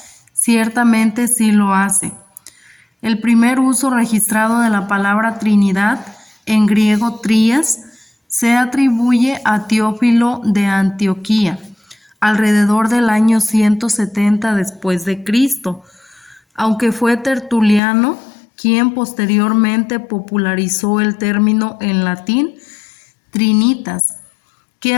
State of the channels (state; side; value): drops out; right; at 17.8 s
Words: ciertamente sí lo hace. El primer uso registrado de la palabra Trinidad, en griego trías, se atribuye a Teófilo de Antioquía, alrededor del año 170 después de Cristo, aunque fue Tertuliano quien posteriormente popularizó el término en latín trinitas, que